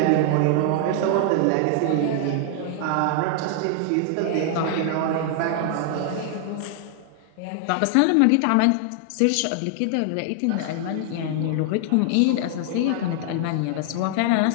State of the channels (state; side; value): different; both; correlation 0.00